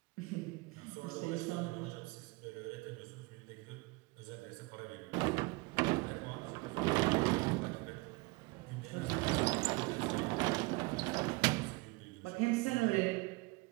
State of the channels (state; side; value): quieter; left; 25.1 dB